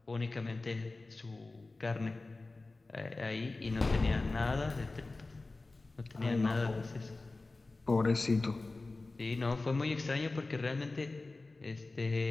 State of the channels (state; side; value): quieter; right; 3.3 dB